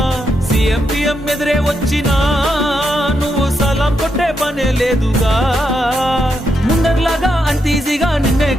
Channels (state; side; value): normal; both; correlation 0.82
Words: సీఎం పిఎం ఎదురే వచ్చినా నువ్వు సలాం కొట్టే పనే లేదుగా ముందర్లాగా అంత ఈజీగా నిన్నే